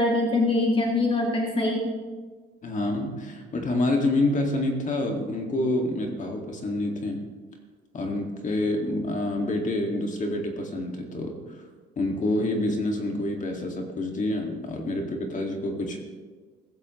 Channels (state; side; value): normal; both; correlation 0.63